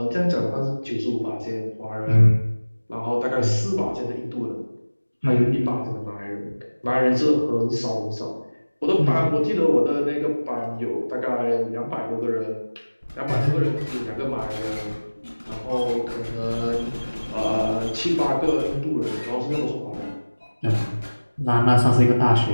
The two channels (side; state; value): both; inverted; correlation -1.00